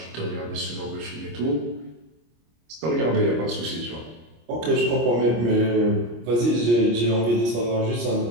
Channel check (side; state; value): left; late; 25 ms